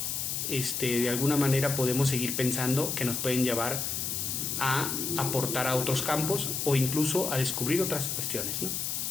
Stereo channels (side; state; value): left; noise; hiss, 2 dB below the sound